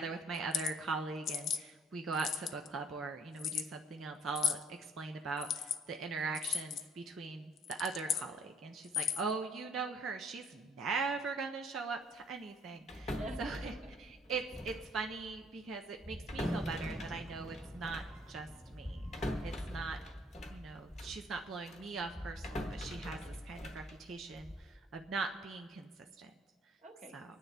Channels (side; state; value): both; normal; correlation 0.60